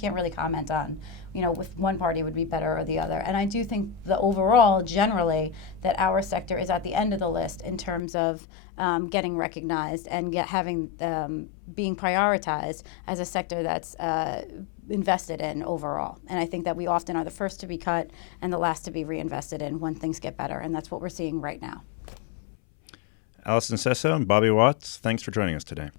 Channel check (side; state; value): right; drops out; at 8.0 s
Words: really comment on, if one party would be better or the other. And I do think the overall, generally, that our sector is at the end of the list in terms of getting recognized and being prioritized as a sector that's invested in overall. And I think that we often are the first to be cut and the last to be reinvested in when things get better. And that's what we're seeing right now. Allison Sesso and Bobby Watts, thanks for joining us today.